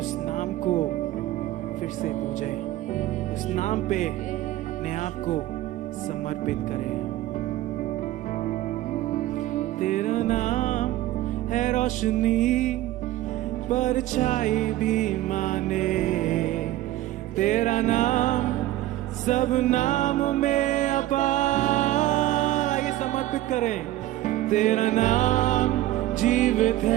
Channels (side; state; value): left; quieter; 15.2 dB